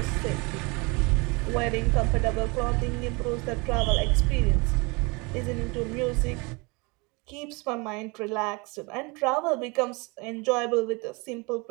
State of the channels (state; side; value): quieter; left; 28.2 dB